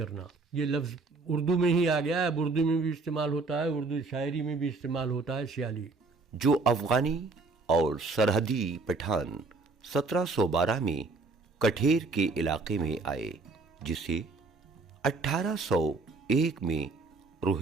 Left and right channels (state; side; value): quieter; left; 3.7 dB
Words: یہ لفظ اردو میں ہی آ گیا ہے، اب اردو میں بھی استعمال ہوتا ہے، اردو شاعری میں بھی استعمال ہوتا ہے سیالی۔ جو افغانی اور سرحدی پٹھان 1712 میں کٹھیر کے علاقے میں آئے، جسے 1801 میں